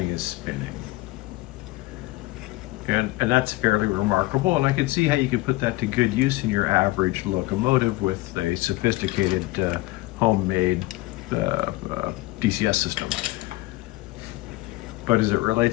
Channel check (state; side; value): quieter; right; 19.9 dB